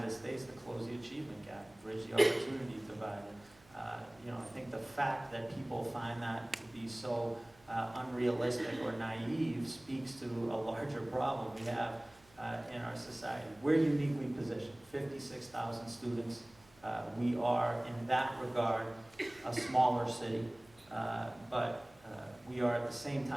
States to close the achievement gap, bridge the opportunity divide. I think the fact that people find that to be so unrealistic or naive speaks to a larger problem we have in our society. We're uniquely positioned, 56,000 students. We are, in that regard, a smaller city, but we are at the same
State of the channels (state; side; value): noise; right; hum, 28 dB below the sound